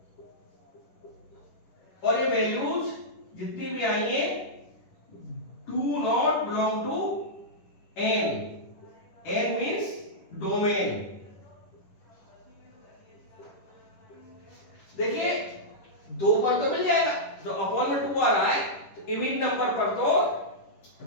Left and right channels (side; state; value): right; late; 10 ms